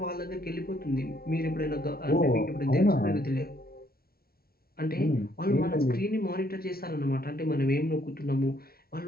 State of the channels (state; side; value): late; right; 0.44 ms